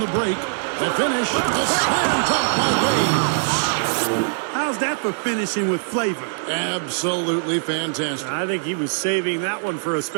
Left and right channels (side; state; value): left; silent; digital silence